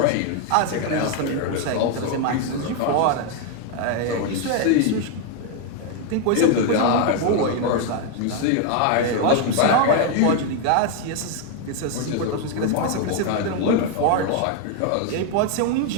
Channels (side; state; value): both; different; correlation 0.01